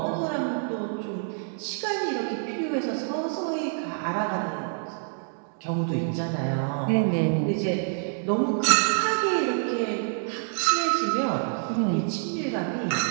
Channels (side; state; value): left; silent; digital silence